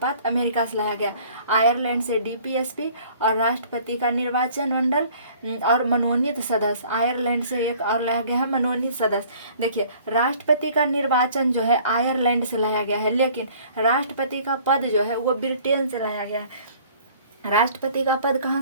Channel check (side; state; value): both; inverted; correlation -0.53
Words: अमेरिका से लाया गया। आयरलैंड से डीपीएसपी और राष्ट्रपति का निर्वाचन मंडल और मनोनीत सदस्य। आयरलैंड से एक और लाया गया है मनोनीत सदस्य। देखिए, राष्ट्रपति का निर्वाचन जो है आयरलैंड से लाया गया है, लेकिन राष्ट्रपति का पद जो है वो ब्रिटेन से लाया गया है। राष्ट्रपति का पद कहाँ